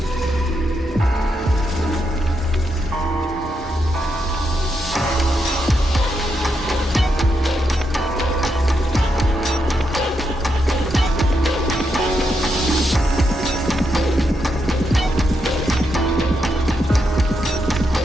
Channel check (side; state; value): both; normal; correlation 0.82